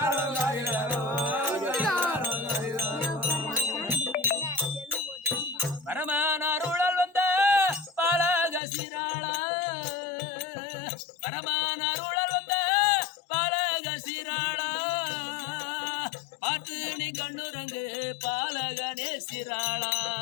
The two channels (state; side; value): drops out; right; at 8.6 s